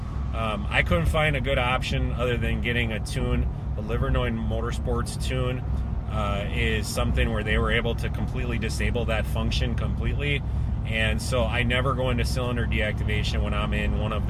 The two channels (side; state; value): both; identical; correlation 1.00